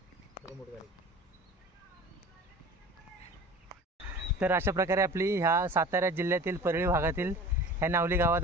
मोठ गाडी. तर अशा प्रकारे आपली ह्या सातारा जिल्ह्यातील परळी भागातील ह्या नावली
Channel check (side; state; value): both; normal; correlation 0.41